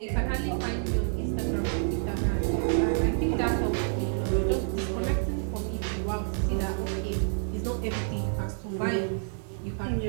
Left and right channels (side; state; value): left; silent; digital silence